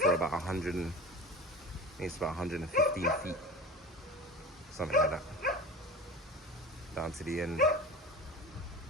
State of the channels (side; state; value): both; normal; correlation 0.33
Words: 100, I think it's about 115 feet, something like that, down to the end.